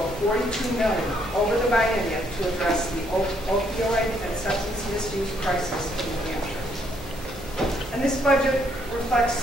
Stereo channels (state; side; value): normal; both; correlation 0.70